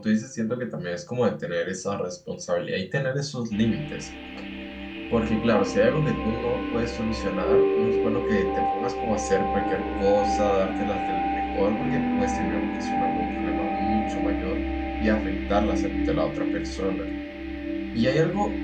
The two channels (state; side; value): identical; both; correlation 1.00